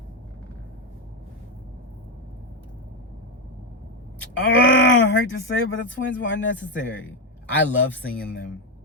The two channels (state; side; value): normal; both; correlation 0.07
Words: I hate to say it, but the twins were unnecessary. I love seeing them.